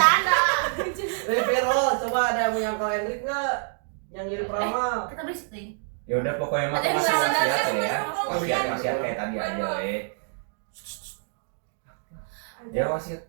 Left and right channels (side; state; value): left; silent; digital silence